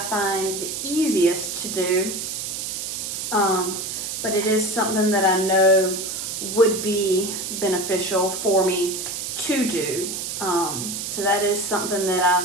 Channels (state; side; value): noise; right; hiss, 5 dB below the sound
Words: find the easiest to do. But it is something that I know would be beneficial for me to do. So that is something